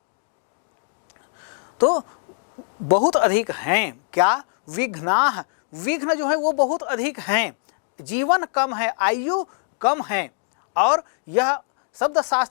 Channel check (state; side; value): silent; right; 63 dB below the other